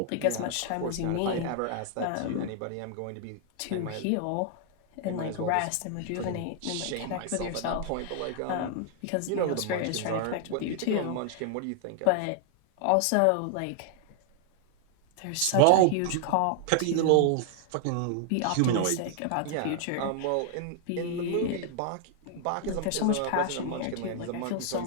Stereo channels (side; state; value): both; different; correlation 0.00